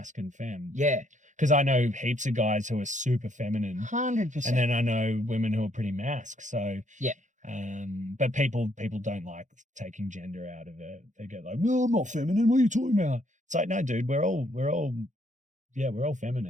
and femme. Yeah. Because I know heaps of guys who are super feminine. 100%. And then I know women who are pretty masc. So But people don't like taking gender out of it. They get like, "No, I'm not feminine. What are you talking about?" It's like, no, dude, we're all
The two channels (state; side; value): late; left; 0.36 ms